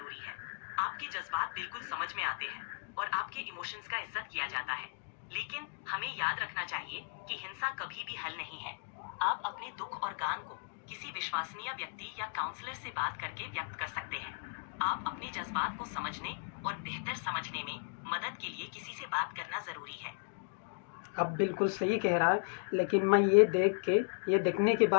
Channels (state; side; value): silent; right; digital silence